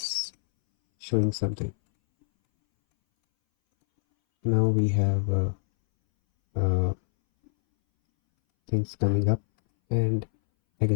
showing something. Now we have things coming up, and I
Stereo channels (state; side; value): silent; right; 62 dB below the other